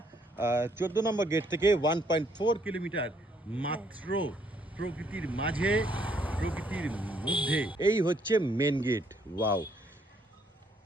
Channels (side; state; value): both; normal; correlation 0.68